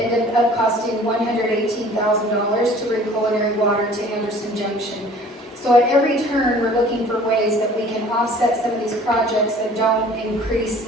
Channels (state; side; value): normal; both; correlation 0.50